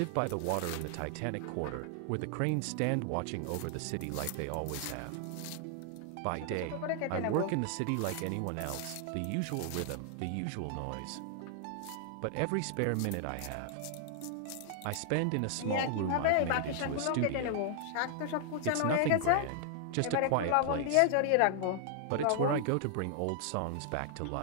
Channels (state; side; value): different; both; correlation 0.00